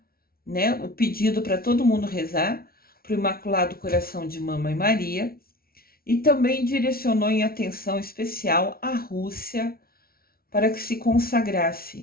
né, o pedido para todo mundo rezar para o Imaculado Coração de Mamãe Maria, e também direcionou em atenção especial a Rússia para que se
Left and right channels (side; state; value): right; late; 0.44 ms